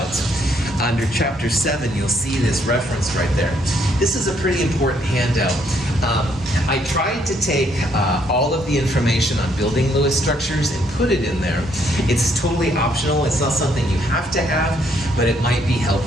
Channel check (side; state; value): both; normal; correlation 0.70